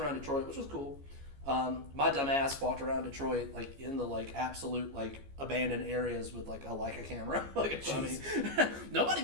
Detroit, which was cool. My dumb ass walked around Detroit like in the like absolute like abandoned areas with like a Leica camera. Like nobody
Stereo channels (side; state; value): left; late; 14 ms